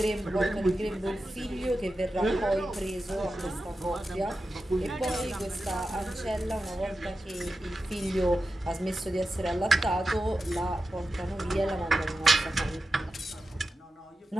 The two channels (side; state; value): both; normal; correlation 0.92